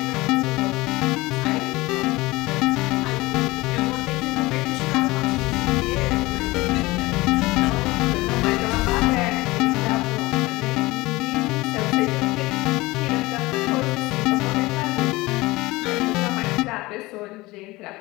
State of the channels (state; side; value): quieter; right; 20.9 dB